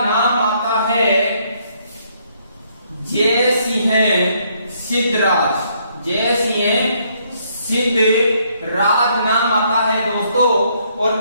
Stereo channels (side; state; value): both; inverted; correlation -0.69